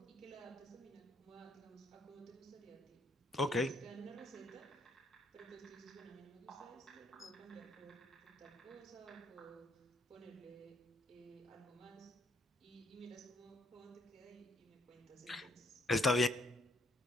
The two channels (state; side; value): normal; both; correlation 0.69